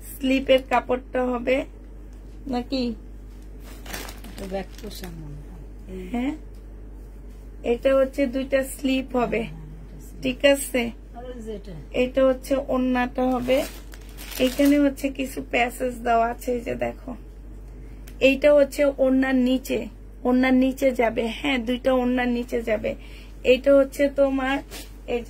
স্লিপের কাপড়টা হবে নাকি, হ্যাঁ এটা হচ্ছে দুইটা স্লিপ হবে, ঠিক আছে। এটা হচ্ছে ওড়নাটা হবে, এখানে হচ্ছে কিছু প্যাসেজ দেওয়া আছে, এই যে দেখো এইটা হচ্ছে ওড়নার নিচে, ওড়নার নিচে যাবে, হ্যাঁ দুইটা ওড়নার নিচে যাবে। এইটা হচ্ছে তোমার এই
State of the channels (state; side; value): identical; both; correlation 1.00